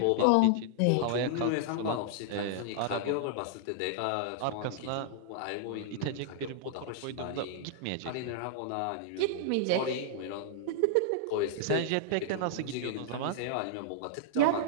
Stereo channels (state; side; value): different; both; correlation -0.01